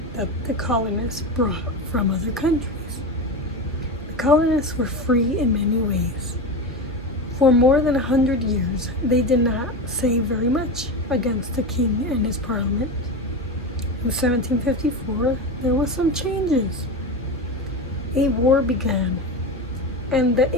that the colonists brought from other countries. The colonists were free in many ways. For more than 100 years, they did not say very much against the king and his parliament. In 1754, there was some changes. A war began, and the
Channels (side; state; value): both; normal; correlation 0.21